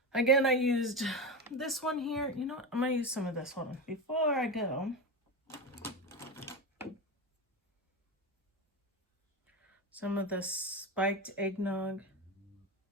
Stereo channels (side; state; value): both; normal; correlation 0.19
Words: Again, I used this one here. You know what? I'm going to use some of this one. Before I go, some of the spiked eggnog.